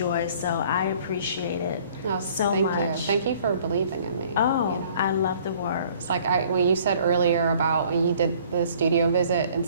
So I appreciate it so much. Thank you. Thank you for believing in me. Oh, you know? I love the work. It's like when you said earlier about when you did the studio visit in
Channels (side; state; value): both; inverted; correlation -0.55